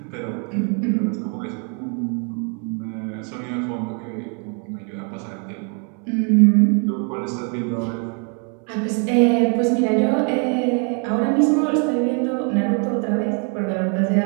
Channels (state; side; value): quieter; left; 38.9 dB